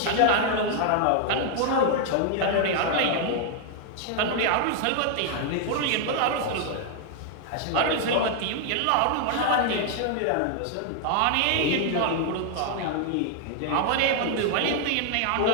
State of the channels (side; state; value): both; different; correlation 0.00